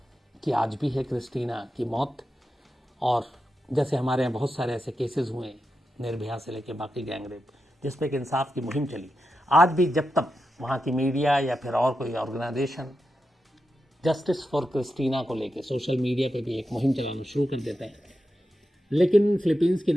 की आज भी है, क्रिस्टीना की मौत। और जैसे हमारे यहाँ बहुत सारे ऐसे केसेस हुए, निर्भया से लेके बाकी गैंगरेप, जिस पे कि इंसाफ की मुहिम चली, आज भी जब तक वहाँ की मीडिया या फिर और कोई ऑर्गेनाइजेशन जस्टिस फॉर क्रिस्टीना को लेके सोशल मीडिया पे भी एक मुहिम चलाना शुरू कर देते हैं, लेकिन फिलीपींस की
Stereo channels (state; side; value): normal; both; correlation 0.88